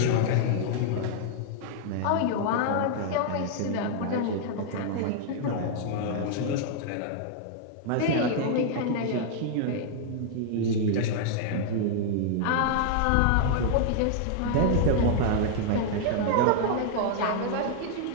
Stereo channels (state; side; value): different; both; correlation -0.01